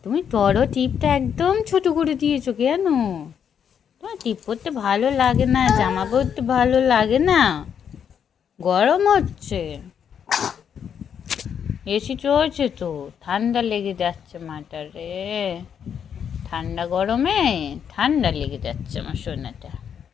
তুমি বড় টিপটা একদম ছোট করে দিয়েছো কেন? তোমার টিপ পরতে ভালো লাগে না, জামা পরতে ভালো লাগে না? গরম হচ্ছে, এসি চলছে তো, ঠান্ডা লেগে যাচ্ছে মাটা রে। ঠান্ডা গরমে ঠান্ডা লেগে যাচ্ছে আমার সোনাটা।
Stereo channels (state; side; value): quieter; right; 8.0 dB